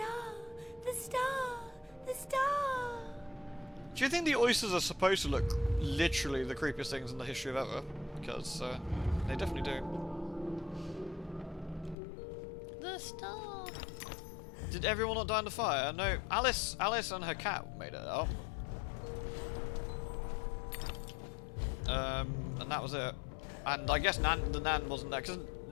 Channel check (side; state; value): right; drops out; at 12.0 s